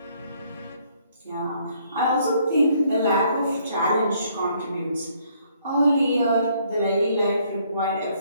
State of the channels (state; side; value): inverted; both; correlation -0.66